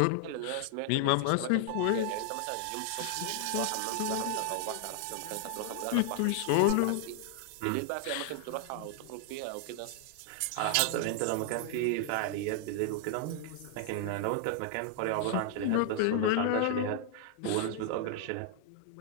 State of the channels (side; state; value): both; different; correlation 0.00